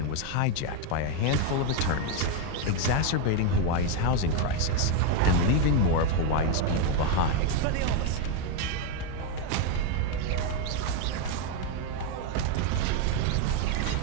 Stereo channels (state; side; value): different; both; correlation 0.02